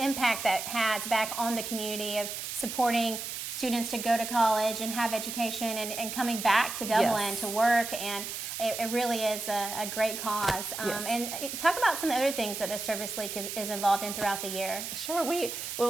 impact that has back on the community of supporting students to go to college and have education and coming back to Dublin to work, and it really is a great cause. And talk about some other things that the Service League is involved in throughout the year. Sure.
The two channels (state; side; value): noise; right; hiss, 6 dB below the sound